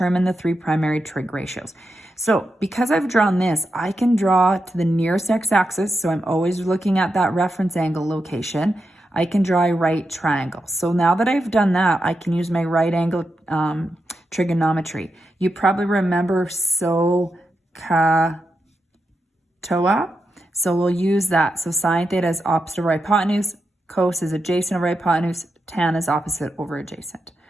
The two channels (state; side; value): normal; both; correlation 0.87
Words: the 3 primary trig ratios. So because I've drawn this, I can draw to the nearest x-axis, so I'm always looking at that reference angle location. I can draw a right triangle. So now that I've done that, I can use my right angle trigonometry. You probably remember SOHCAHTOA. So we'll use that. So sine theta is opposite over hypotenuse, cos is adjacent over hypotenuse, tan is opposite over adjacent.